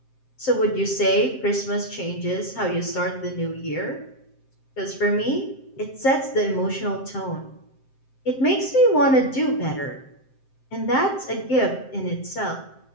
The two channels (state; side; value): late; right; 7.6 ms